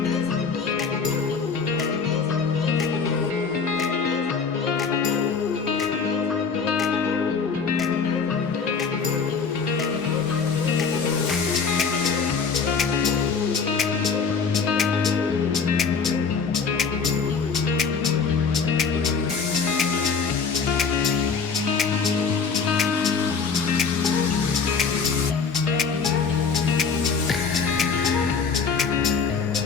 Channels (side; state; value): right; quieter; 5.3 dB